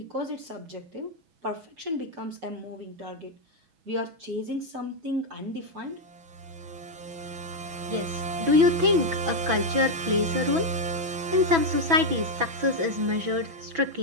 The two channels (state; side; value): late; left; 6.1 ms